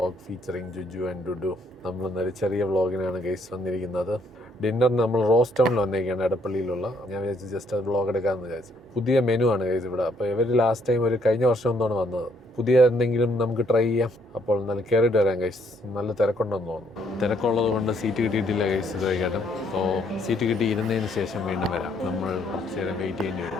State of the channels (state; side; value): normal; both; correlation 0.69